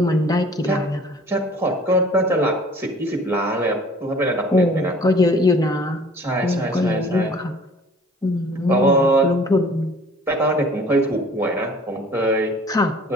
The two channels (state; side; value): normal; both; correlation 0.50